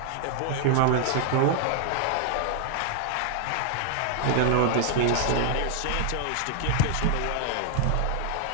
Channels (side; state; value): both; different; correlation 0.00